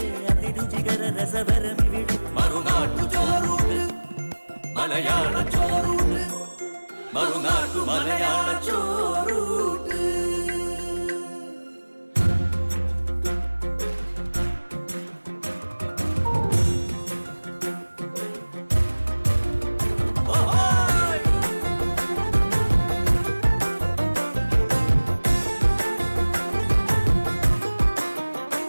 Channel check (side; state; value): both; inverted; correlation -1.00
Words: അതിരുചികര രസഭരമിവിടെ മറുനാട്ടു ചോറൂട്ട് മലയാള ചോറൂട്ട് മറുനാട്ടു മലയാള ചോറൂട്ട്